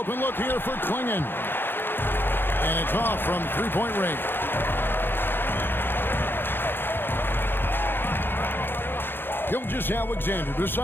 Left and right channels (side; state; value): right; late; 0.10 ms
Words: look here for Klingon. And it's off from three-point range. Gilgeous-Alexander